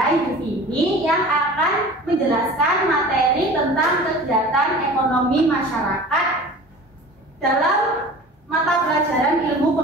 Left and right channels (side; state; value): both; normal; correlation 0.40